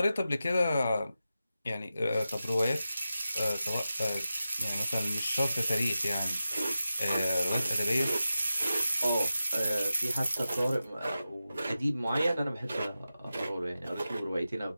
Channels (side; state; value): both; inverted; correlation -0.92